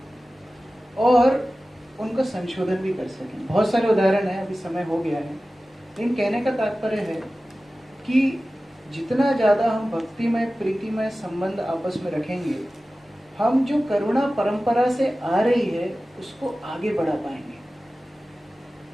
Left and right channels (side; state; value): both; normal; correlation 0.96